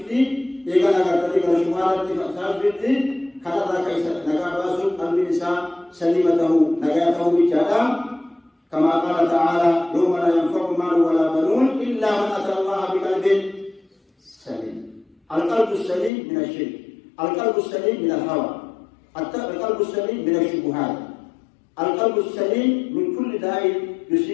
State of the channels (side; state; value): right; drops out; at 16.1 s